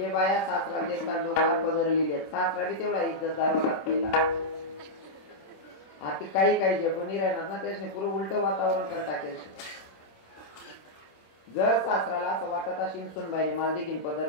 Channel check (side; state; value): right; late; 26 ms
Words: बाया सासरा देखतात डोकार पदरलेले, सासरा बी तेवढा इज्जतदार होता पहिला. आता काही काही जे पण राहणार ना त्याने पुरं उलट वातावरण कर टाकेल. जर सासराला असं वाटत असेल सुनबाईने मला देखील